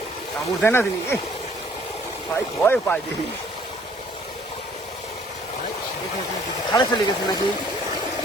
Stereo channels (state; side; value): normal; both; correlation 0.59